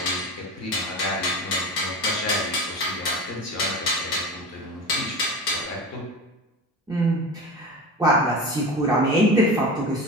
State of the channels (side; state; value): both; normal; correlation 0.30